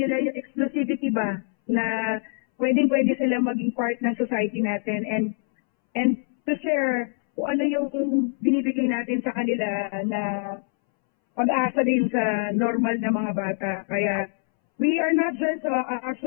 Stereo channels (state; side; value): silent; right; 62 dB below the other